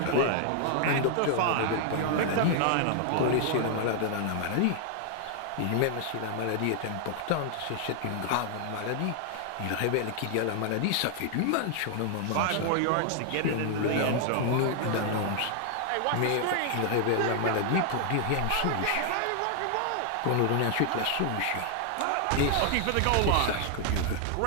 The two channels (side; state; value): both; different; correlation 0.00